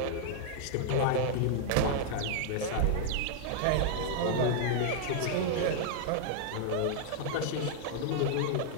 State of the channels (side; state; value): both; different; correlation -0.01